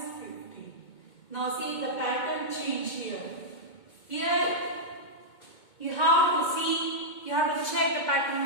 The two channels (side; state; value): right; late; 2.2 ms